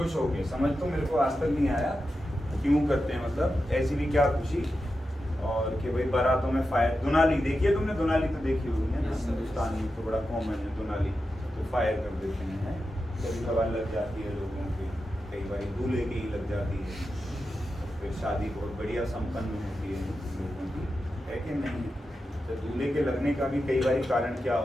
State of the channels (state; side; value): normal; both; correlation 0.90